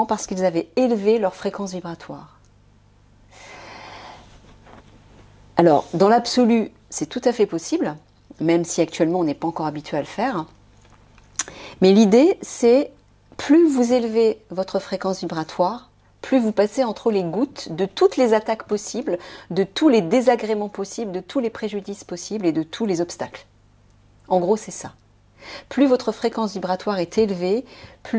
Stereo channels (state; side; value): identical; both; correlation 1.00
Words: parce qu'ils avaient élevé leur fréquence vibratoire. Alors, dans l'absolu, c'est tout à fait possible, même si actuellement on n'est pas encore habitué à le faire. Mais l'idée, c'est plus vous élevez votre fréquence vibratoire, plus vous passez entre les gouttes de toutes les attaques possibles, de tous les désagréments possibles, de tous les préjudices possibles et de tous les obstacles. En gros, c'est ça. Plus votre fréquence vibratoire est élevée,